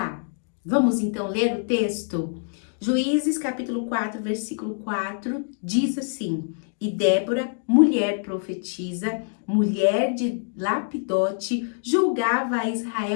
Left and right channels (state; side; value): silent; right; digital silence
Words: vamos então ler o texto? Juízes capítulo 4, versículo 4, diz assim: E Débora, mulher profetisa, mulher de Lapidote, julgava a